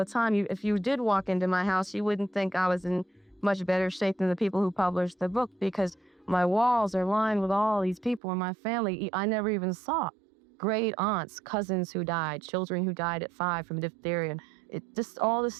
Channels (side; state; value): left; drops out; at 8.2 s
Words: time. If you did walk into my house, you wouldn't think I was in much better shape than the people who published the book, because my walls are lined with all these people in my family I never even saw. Great aunts, cousins who died, children who died at 5 from diphtheria. Just all this